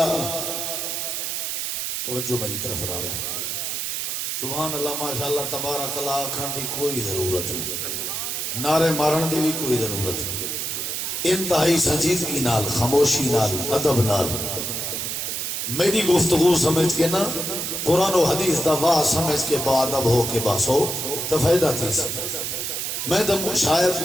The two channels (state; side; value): noise; right; hiss, 2 dB below the sound